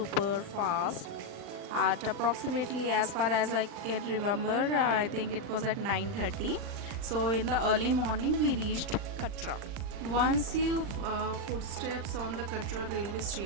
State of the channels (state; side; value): late; left; 40 ms